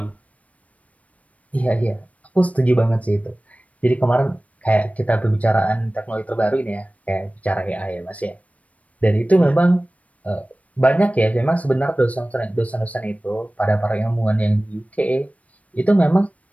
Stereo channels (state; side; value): late; right; 0.067 ms